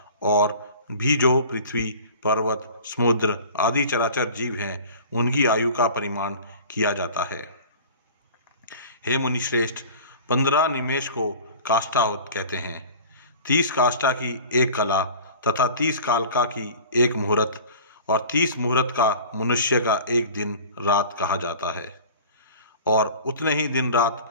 और भी जो पृथ्वी, पर्वत, समुद्र आदि चराचर जीव हैं, उनकी आयु का परिमाण किया जाता है। हे मुनिश्रेष्ठ, 15 निमेष को काष्ठा कहते हैं। 30 काष्ठा की एक कला तथा 30 कालका की एक मुहूर्त और 30 मुहूर्त का मनुष्य का एक दिन रात कहा जाता है। और उतने ही दिन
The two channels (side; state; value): both; inverted; correlation -0.41